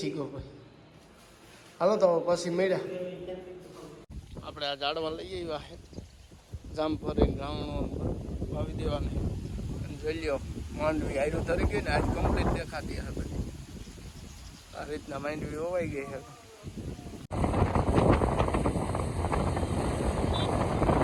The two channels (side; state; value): both; identical; correlation 1.00